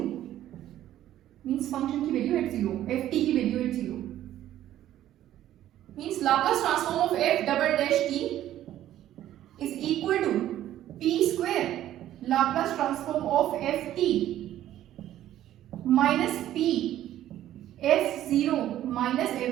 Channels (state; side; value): quieter; left; 12.6 dB